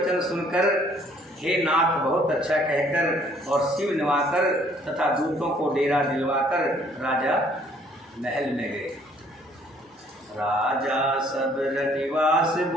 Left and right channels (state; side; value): normal; both; correlation 0.61